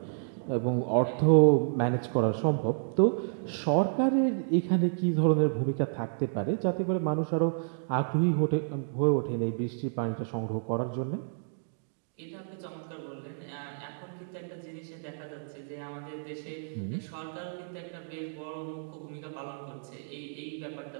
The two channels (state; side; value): silent; left; digital silence